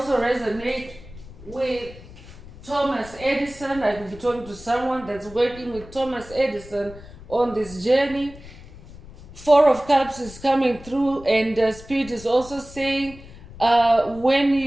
resonate with Thomas Edison. I could be talking to someone that's working with Thomas Edison on this journey. Four of Cups is coming through, and Spirit is also saying when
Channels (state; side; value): noise; left; rumble, 18 dB below the sound